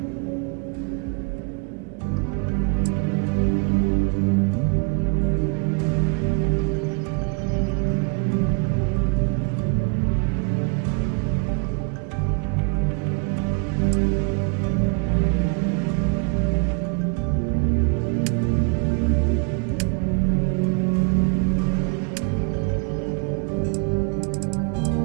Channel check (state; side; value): quieter; left; 35.0 dB